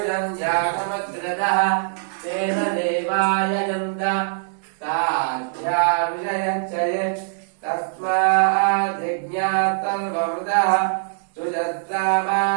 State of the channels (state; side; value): silent; left; digital silence